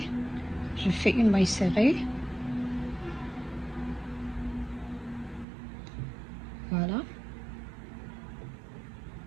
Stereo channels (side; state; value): left; drops out; at 5.5 s